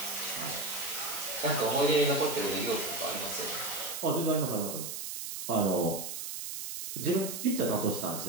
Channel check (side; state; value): right; noise; hiss, 6 dB below the sound